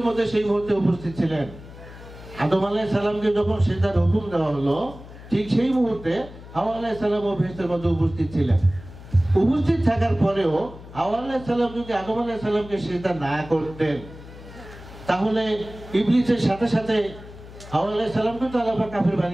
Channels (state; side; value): noise; left; hum, 17 dB below the sound